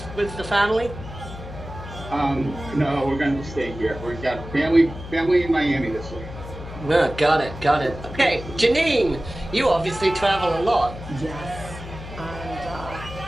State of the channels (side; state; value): left; noise; hum, 12 dB below the sound